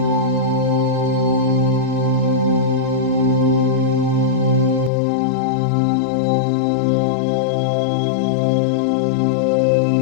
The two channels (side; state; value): right; drops out; at 4.9 s